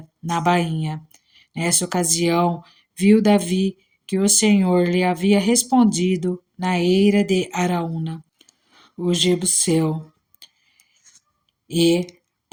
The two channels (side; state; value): both; identical; correlation 1.00